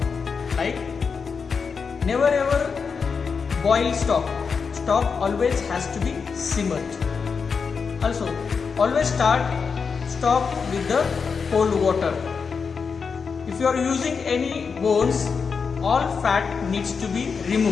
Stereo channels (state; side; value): quieter; right; 5.6 dB